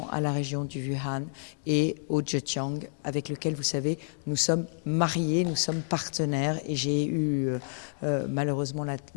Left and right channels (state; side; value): silent; right; 58 dB below the other